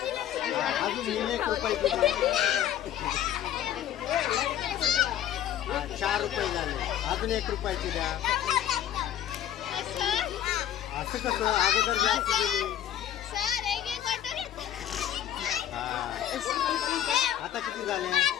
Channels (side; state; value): right; quieter; 11.0 dB